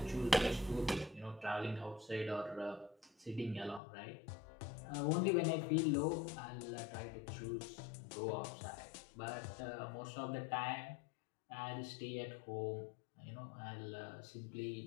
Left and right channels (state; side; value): drops out; right; at 3.8 s